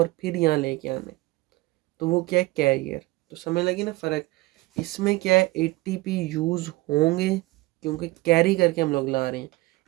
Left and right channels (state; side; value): quieter; left; 20.8 dB